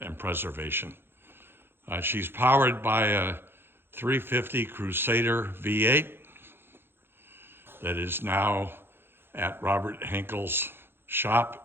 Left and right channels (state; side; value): late; left; 0.11 ms